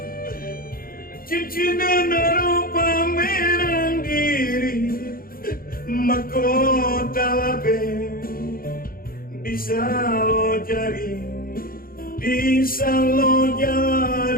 cincin dan rupa merang diri mahkota labe bisa lo jari bisa lo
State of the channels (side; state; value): right; late; 0.42 ms